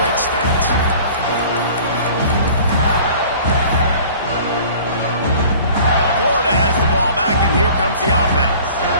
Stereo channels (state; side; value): inverted; both; correlation -0.47